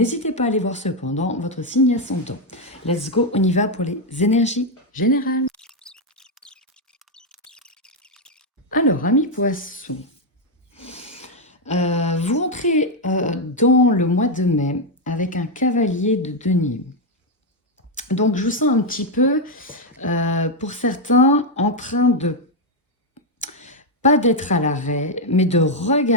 pas à aller voir cependant votre signe ascendant. Let's go, on y va pour les énergies générales. Alors, amis poissons, vous entrez dans le mois de mai avec un cavalier de denier. Donc, je vous sens un petit peu, pour certains, en train de, pas d'être à l'arrêt, mais de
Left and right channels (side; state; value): both; normal; correlation 0.02